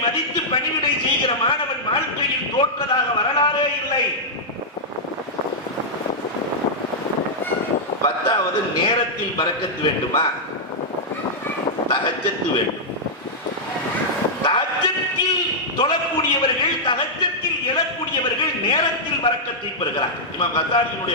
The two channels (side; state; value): both; normal; correlation -0.07